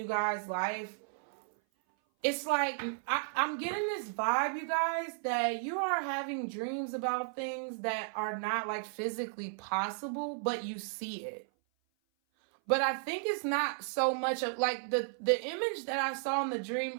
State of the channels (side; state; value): left; silent; 55 dB below the other